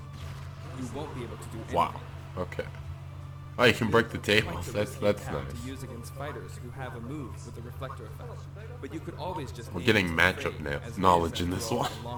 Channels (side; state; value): both; identical; correlation 1.00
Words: you won't be able to do anything. Wow. Okay. Oh, you can break the Quite tables. the That's risky nice. attack to use against fighters who have a move with a reflector effect. But you could always just We're aim getting to matchup evade, as it is knowledge after in this all one. a